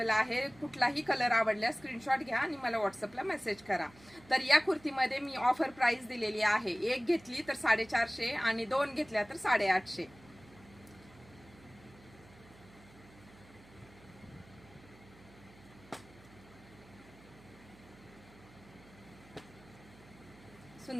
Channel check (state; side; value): noise; right; hum, 23 dB below the sound